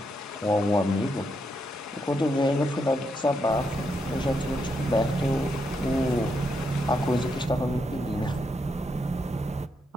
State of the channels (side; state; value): both; normal; correlation 0.80